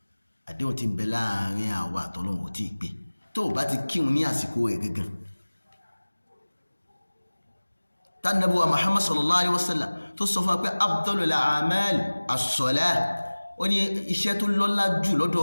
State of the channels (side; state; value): both; inverted; correlation -1.00